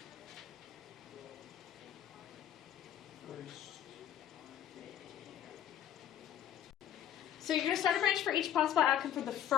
so you're going to start a branch for each possible outcome for the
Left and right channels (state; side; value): quieter; right; 10.6 dB